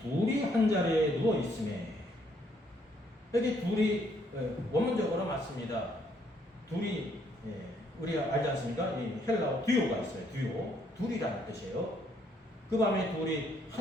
둘이 한 자리에 누워 있음에, 여기 둘이 원문적으로 맞습니다. 둘이 우리가 알지 않습니까? 이 헬라어 듀오가 있어요. 듀오. 둘이라는 뜻이에요. 그 밤에 둘이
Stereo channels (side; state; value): both; normal; correlation 0.69